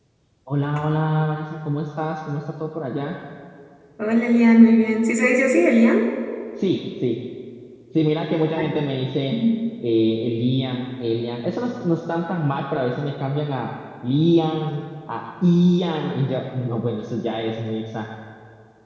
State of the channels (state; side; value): identical; both; correlation 1.00